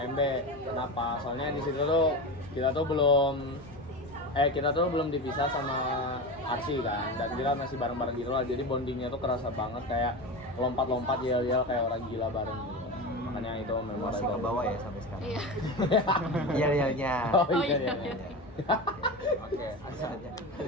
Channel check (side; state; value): both; normal; correlation 0.24